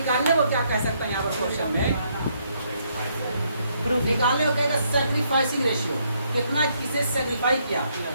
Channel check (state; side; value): inverted; both; correlation -0.72